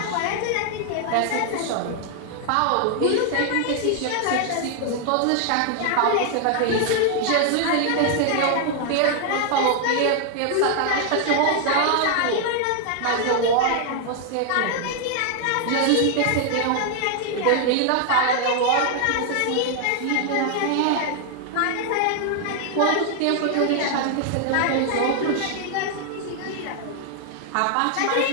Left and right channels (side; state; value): both; different; correlation 0.00